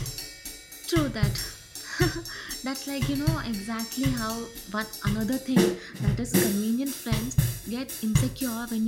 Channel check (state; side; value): identical; both; correlation 1.00